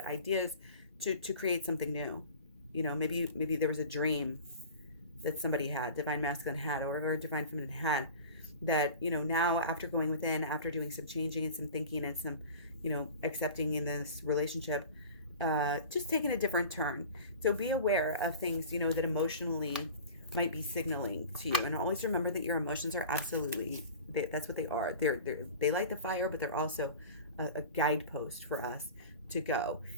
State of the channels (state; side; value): inverted; both; correlation -0.38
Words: ideas to create something new. Maybe there was a dream that somebody had, divine masculine had, or divine feminine had, that, now after going within, after doing some changing and some thinking and some, accepting in this relationship, just taking a different turn. So be aware of things, that emotionally might be signaling to you. And always remember that your emotions are absolutely, that's what they are. They light the fire, but they're also a guidepost for us to go.